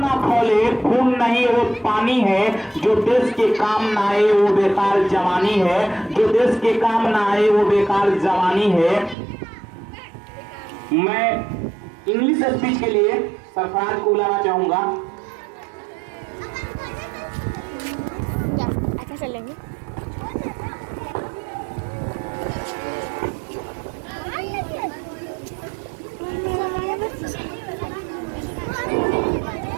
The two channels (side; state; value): left; drops out; at 9.2 s